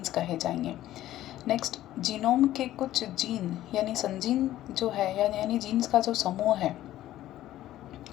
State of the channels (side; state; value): right; quieter; 13.9 dB